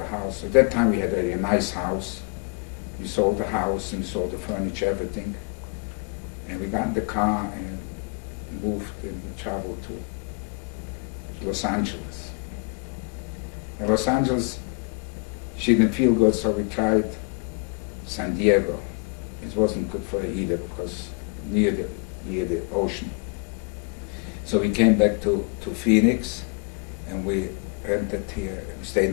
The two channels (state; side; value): quieter; right; 33.1 dB